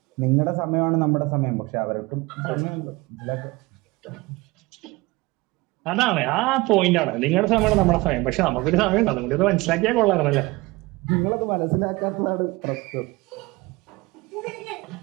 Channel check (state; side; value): quieter; left; 22.4 dB